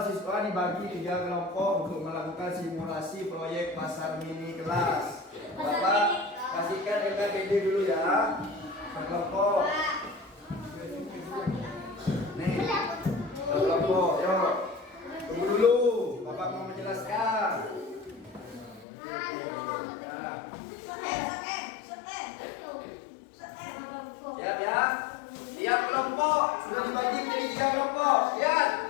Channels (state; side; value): drops out; right; at 18.9 s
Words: siswa dibagi 3 kelompok untuk melakukan simulasi proyek pasar mini kelas. Bapak kasihkan LKPD dulu ya. Kelompok. Nih. Kelompok, yuk. Tunggu dulu, Bapak mau menjelaskan. Siap ya. Tiap kelompok sudah dibagi jadi 3 kelompok. Lihat.